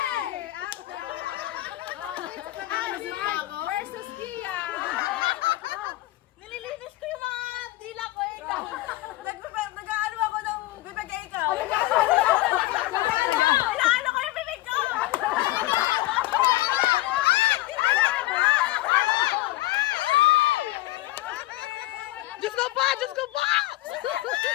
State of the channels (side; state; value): right; quieter; 17.9 dB